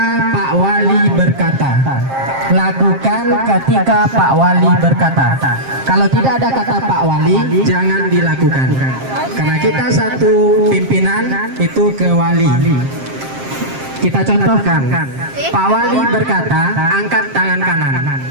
Pak Wali berkata. Lakukan ketika Pak Wali berkata. Kalau tidak ada kata Pak Wali, jangan dilakukan. Karena kita satu pimpinan itu ke wali. Kita contohkan, Pak Wali berkata, angkat tangan kanan.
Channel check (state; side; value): late; left; 7.5 ms